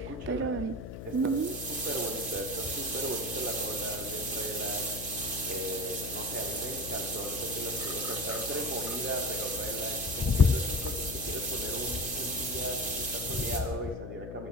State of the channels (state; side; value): noise; left; hum, 9 dB below the sound